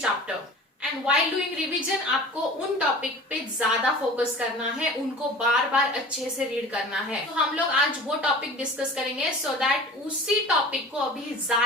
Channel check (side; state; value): both; normal; correlation 0.40